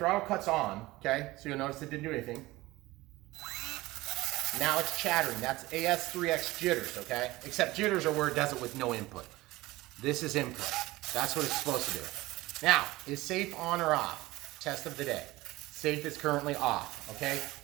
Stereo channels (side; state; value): left; quieter; 19.1 dB